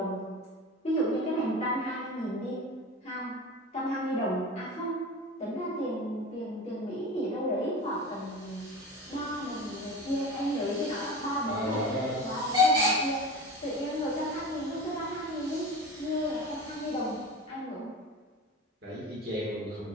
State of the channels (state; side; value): normal; both; correlation 0.32